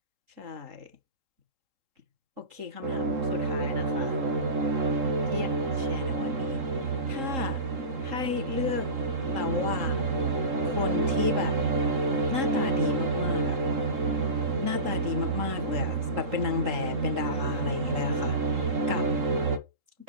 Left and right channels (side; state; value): left; late; 3.7 ms